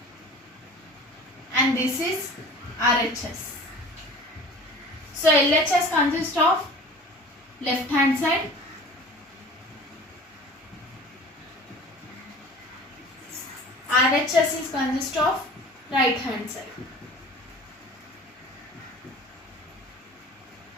And this is RHS. So LHS consists of left hand side, RHS is consist of right hand side.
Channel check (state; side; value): normal; both; correlation 0.42